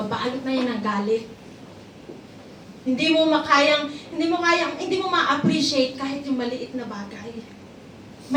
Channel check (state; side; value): identical; both; correlation 1.00